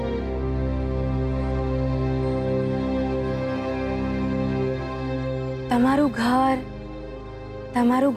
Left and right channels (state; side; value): identical; both; correlation 1.00